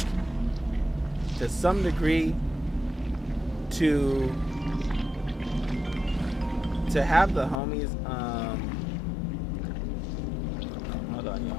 To some degree, to have the homies, hold on,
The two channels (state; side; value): drops out; right; at 7.6 s